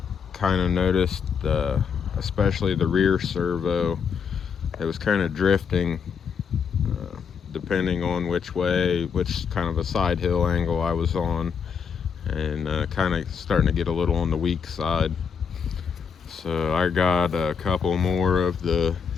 kind of noticed, especially the rear servo, it was kind of drifting depending on which kind of a side hill angle I was on, and kind of starting to get a little on the weak side. So I got a couple more of the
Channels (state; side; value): quieter; right; 6.5 dB